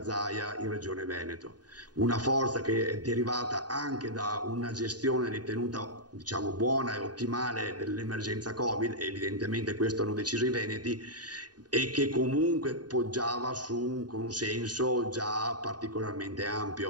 Zaia in Regione Veneto, una forza che è derivata anche da una gestione ritenuta, diciamo, buona e ottimale dell'emergenza Covid, e evidentemente questo hanno deciso i veneti, e che comunque poggiava su un consenso già particolarmente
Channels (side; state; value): left; late; 0.69 ms